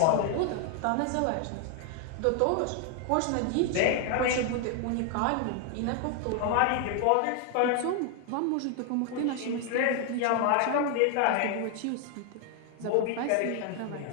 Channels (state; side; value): different; both; correlation 0.00